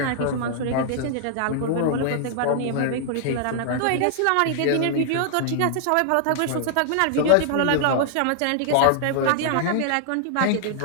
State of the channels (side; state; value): both; different; correlation -0.01